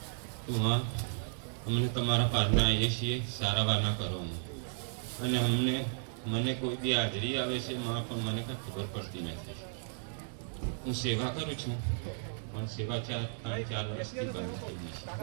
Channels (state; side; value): silent; left; digital silence